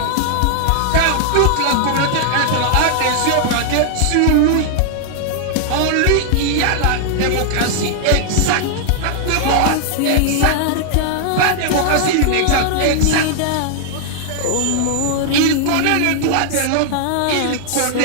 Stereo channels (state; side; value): different; both; correlation 0.00